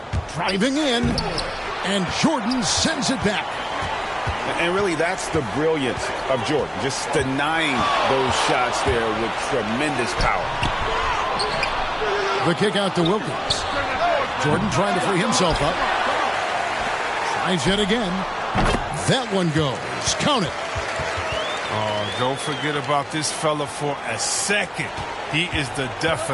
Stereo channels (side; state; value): both; identical; correlation 1.00